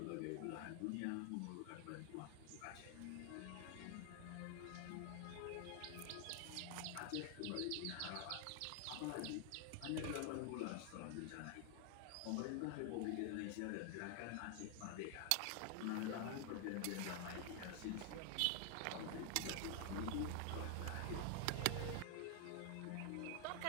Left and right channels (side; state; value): both; different; correlation 0.00